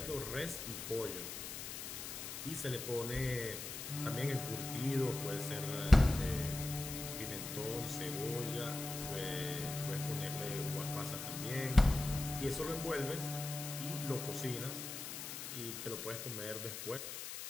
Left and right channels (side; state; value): left; noise; hiss, 7 dB below the sound